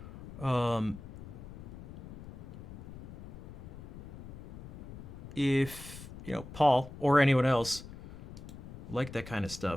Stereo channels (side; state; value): left; noise; rumble, 14 dB below the sound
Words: If, you know, Paul or anyone else like that kind of